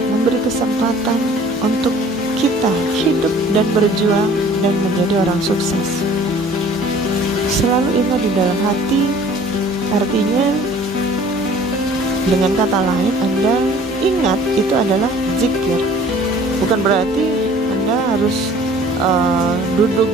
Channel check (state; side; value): normal; both; correlation 0.51